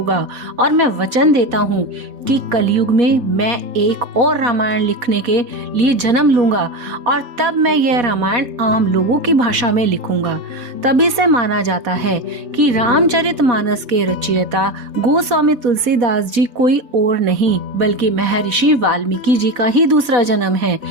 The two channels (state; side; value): late; left; 4.2 ms